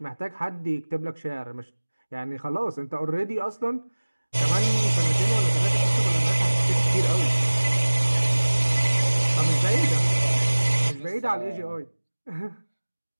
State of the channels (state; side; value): inverted; both; correlation -1.00